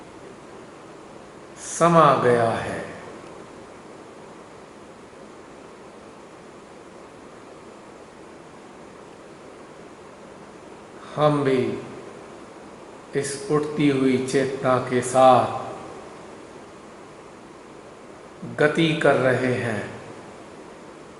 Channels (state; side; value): identical; both; correlation 1.00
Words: समा गया है। हम भी इस उठती हुई चेतना के साथ गति कर रहे हैं।